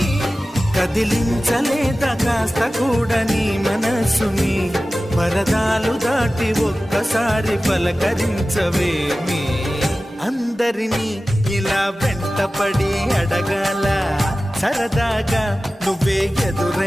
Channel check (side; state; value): both; normal; correlation 0.96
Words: కదిలించలేదా కాస్త కూడా నీ మనసుని పరదాలు దాటి ఒక్కసారి పలకరించవేమి అందరినీ ఇలా వెంటపడి అడగాల సరదాగా నువ్వే